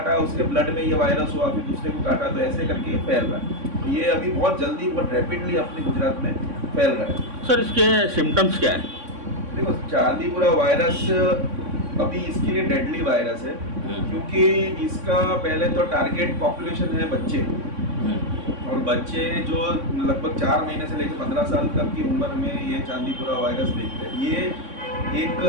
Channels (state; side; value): late; left; 3.6 ms